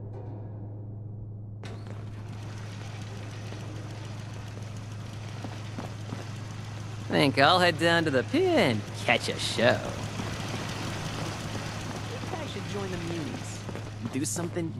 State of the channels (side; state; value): both; identical; correlation 1.00